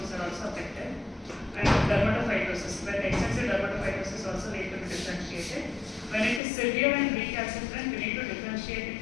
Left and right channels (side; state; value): right; drops out; at 6.4 s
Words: are also affected. And dermatophytosis, where extensive dermatophytosis also need to be differentiated. When it is severe and recalcitrant, we need to differentiate it